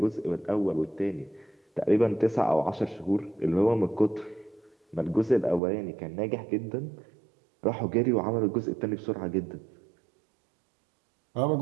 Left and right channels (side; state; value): left; drops out; at 5.6 s